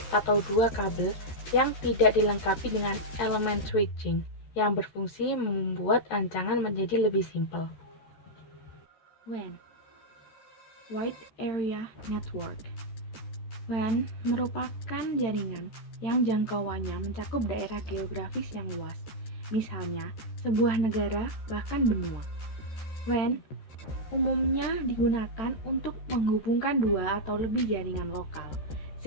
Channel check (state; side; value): late; right; 13 ms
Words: atau dua kabel yang tidak dilengkapi dengan elemen switching yang berfungsi membuat rancangan menjadi lebih simpel. WAN, Wide Area Network. WAN merupakan jaringan yang jangkauannya mencakup daerah geografis yang luas, misalnya sebuah negara bahkan benua. WAN umumnya digunakan untuk menghubungkan dua atau lebih jaringan lokal,